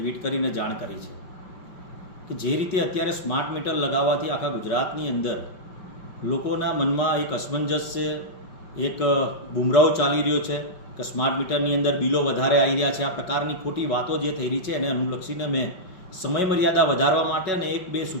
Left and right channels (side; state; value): right; late; 5.4 ms